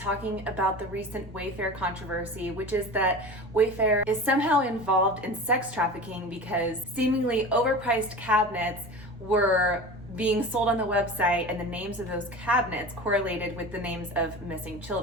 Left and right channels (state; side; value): normal; both; correlation 0.33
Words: about the recent Wayfair controversy, which is that Wayfair is somehow involved in sex trafficking because seemingly overpriced cabinets were being sold on the website and the names of those cabinets correlated with the names of missing